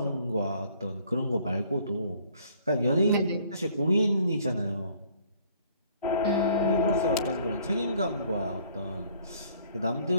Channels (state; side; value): inverted; both; correlation -0.59